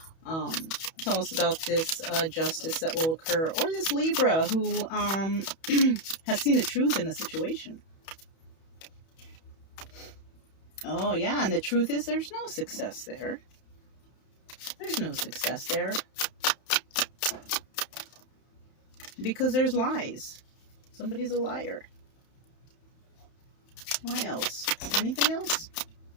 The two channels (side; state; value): right; late; 31 ms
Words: Tell us about this justice that will occur, or this Libra who has seen the truth in the situation. Oh yeah, and the truth is there's no success there. There's no success there. Because there's lies. Somebody's a liar. Why else? Anything else?